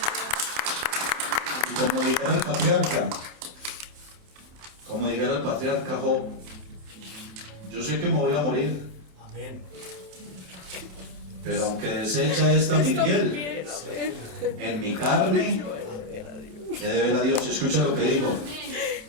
Y como dijera el patriarca Job, yo sé que me voy a morir, Amén. pero aunque deshecha esta mi piel, en mi carne he de ver a Dios. Escucha lo que digo,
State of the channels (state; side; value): late; left; 28 ms